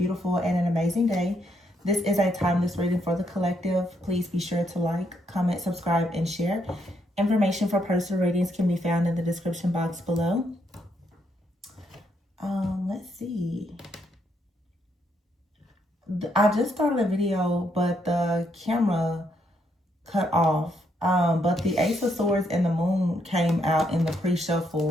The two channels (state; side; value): normal; both; correlation 0.75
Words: and an amazing day. This is a timeless reading for the collective. Please be sure to like, comment, subscribe, and share. Information for personal readings can be found in the description box below. Let's see. I just started a video, but the camera cut off. But the Ace of Swords and the Moon came out in the